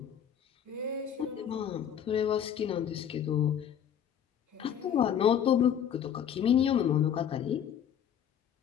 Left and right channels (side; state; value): right; quieter; 8.9 dB